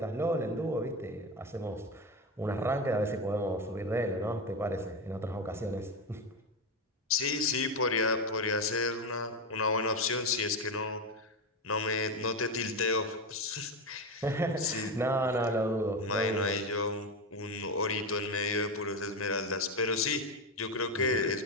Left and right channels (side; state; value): both; normal; correlation 0.15